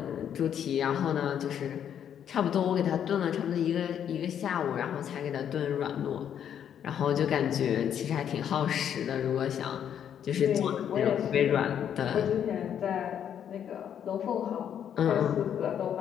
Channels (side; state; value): right; quieter; 9.1 dB